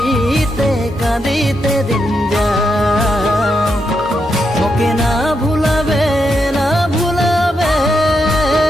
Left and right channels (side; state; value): both; normal; correlation 0.82